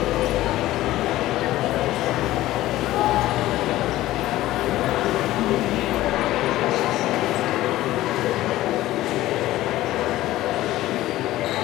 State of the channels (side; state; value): right; quieter; 15.7 dB